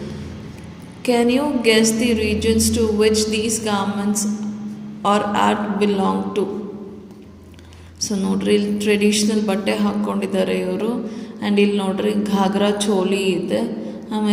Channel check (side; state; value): both; identical; correlation 1.00